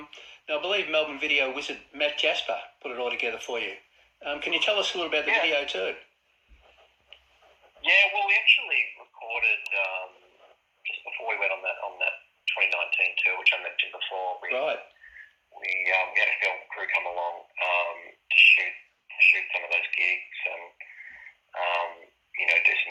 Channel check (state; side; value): identical; both; correlation 1.00